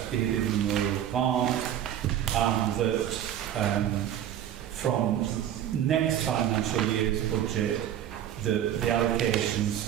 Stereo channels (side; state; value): left; quieter; 10.8 dB